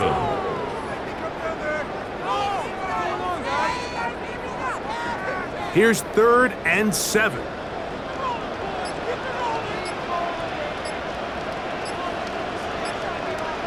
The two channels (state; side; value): identical; both; correlation 1.00